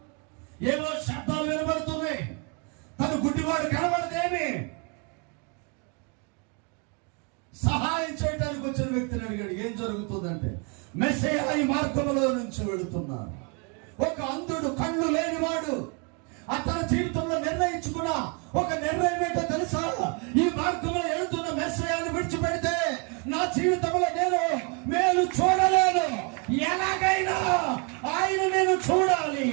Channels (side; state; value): left; quieter; 34.7 dB